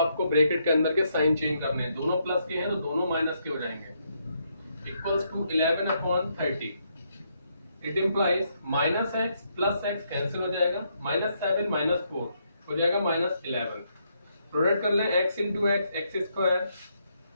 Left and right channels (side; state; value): both; inverted; correlation -0.76